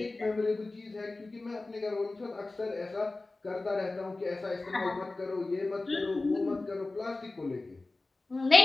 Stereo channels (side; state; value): right; quieter; 3.2 dB